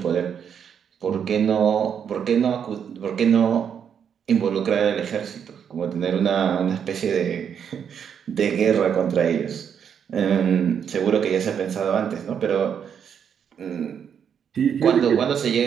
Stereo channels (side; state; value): left; quieter; 7.8 dB